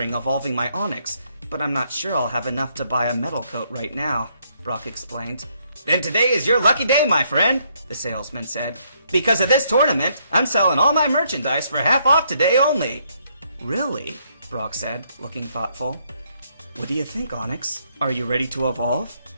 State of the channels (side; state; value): both; inverted; correlation -0.71